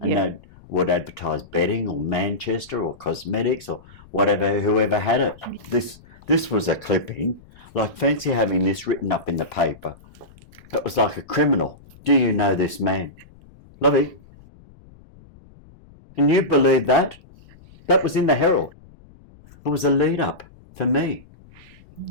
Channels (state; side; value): noise; left; rumble, 24 dB below the sound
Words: Yeah. they would advertise bedding or Manchester or cosmetics or whatever, whoever had it. This was a clipping. Like, fancy having this written up in the paper. It was like a criminal. Do you know this man? Lovey, can you believe that? That was in the Herald. It was a lead up for me.